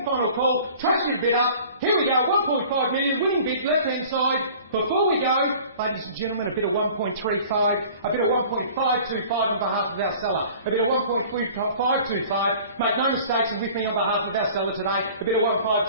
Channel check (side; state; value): both; inverted; correlation -0.46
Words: final call. Trust your bid up. Here we go, 1.5 million, winning bid, left-hand side. Before we go, ladies and gentlemen, a bit of 1.35, a bit of 1.525 on behalf of our seller. A bit of 1.525. Make no mistakes, and with me on behalf of our seller today. A bit of